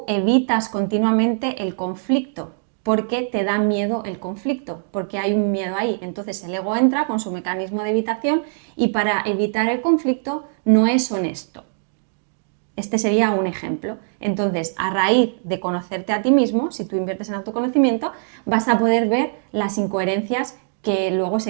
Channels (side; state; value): left; silent; digital silence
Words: evitas continuamente el conflicto porque te da miedo el conflicto, porque hay un miedo ahí. Entonces el ego entra con su mecanismo de evitación y para evitar el conflicto no es honesto. Este sería un ejemplo. Entonces, a raíz de conocerte a ti mismo, si tú inviertes en autoconocimiento, vas a poder ver las incoherencias que luego